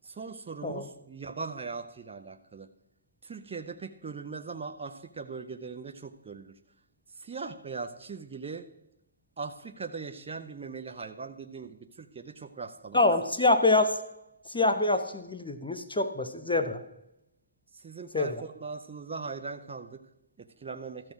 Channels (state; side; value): inverted; both; correlation -0.36